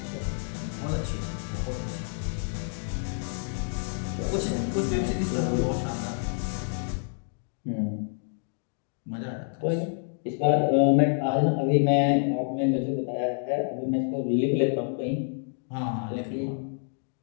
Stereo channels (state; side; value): silent; right; digital silence